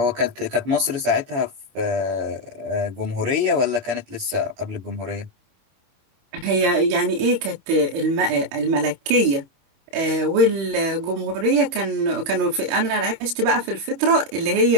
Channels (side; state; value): left; late; 22 ms